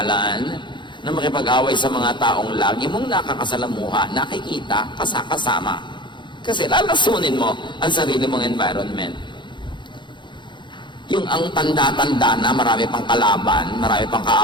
na makipag-away sa mga taong lagi mong nakakasalamuha, nakikita, kasama. Kasi lalasunin mo ang sarili mong environment. Yung ang tanda-tanda na marami pang kalaban, marami pang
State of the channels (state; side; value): late; right; 0.23 ms